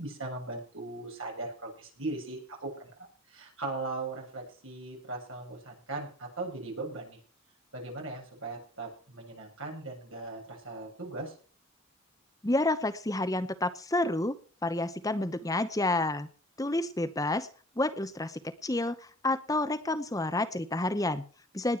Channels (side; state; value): both; normal; correlation 0.52